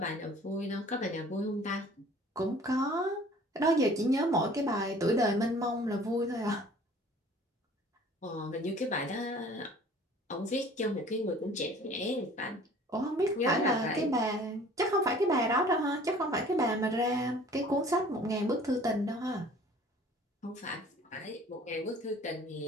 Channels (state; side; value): normal; both; correlation 0.50